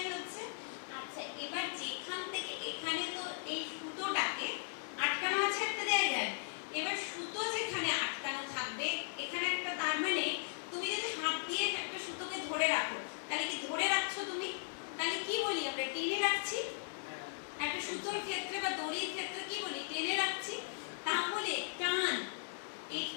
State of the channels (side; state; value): right; silent; 53 dB below the other